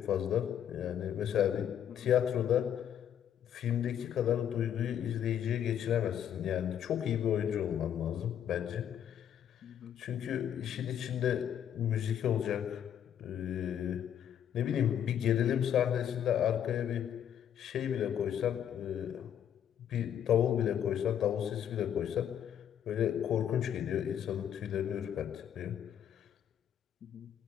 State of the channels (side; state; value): right; quieter; 9.5 dB